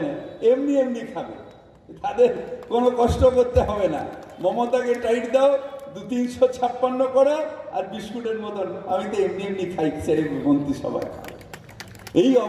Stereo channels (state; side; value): identical; both; correlation 1.00